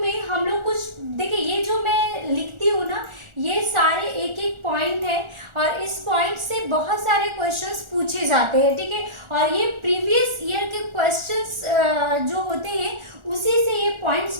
हम लोग कुछ देखिए, ये जो मैं लिखती हूँ ना, ये सारे एक एक पॉइंट है और इस पॉइंट से बहुत सारे क्वेश्चंस पूछे जाते हैं। ठीक है, और ये प्रीवियस ईयर के क्वेश्चंस जो होते हैं उसी से ये पॉइंट्स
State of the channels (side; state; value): left; late; 1.4 ms